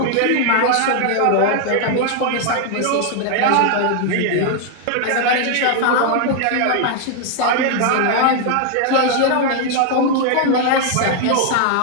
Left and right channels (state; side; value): different; both; correlation 0.00